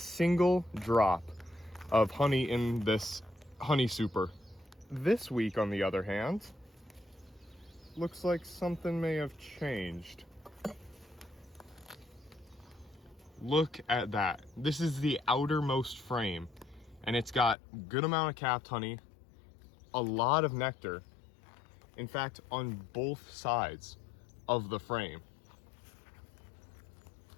drop of honey in this honey super. This week, on the other hand, looks like something may have changed. Look at that. This is the outermost frame, and it's got a good amount of capped honey, a lot of nectar. In fact, on both sides of the frame.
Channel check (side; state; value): right; drops out; at 17.6 s